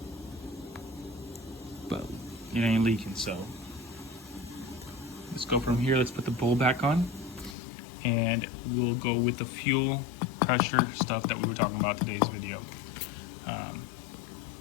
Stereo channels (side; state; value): right; drops out; at 7.6 s